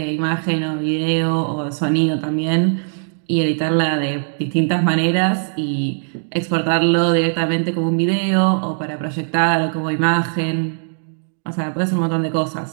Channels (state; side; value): silent; left; digital silence